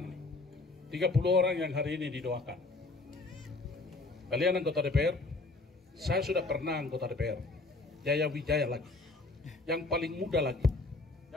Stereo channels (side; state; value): right; quieter; 3.3 dB